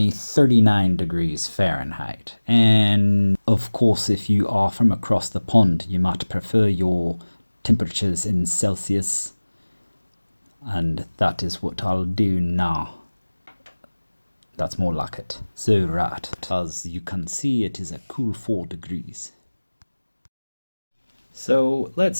39 degrees Fahrenheit. And of course, if you are from across the pond, you might prefer your temperatures in Celsius. And that is what I'll do now. That's more like it. So right, as you can see, it is a cool 4 degrees. So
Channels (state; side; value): inverted; both; correlation -1.00